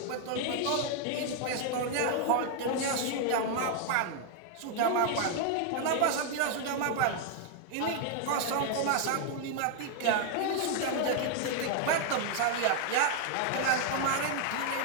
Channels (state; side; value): different; both; correlation 0.00